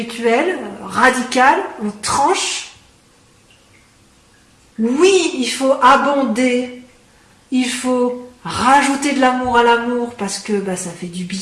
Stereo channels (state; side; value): identical; both; correlation 1.00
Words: radical, on tranche. Oui, il faut abonder, il faut rajouter de l'amour à l'amour parce que ça fait du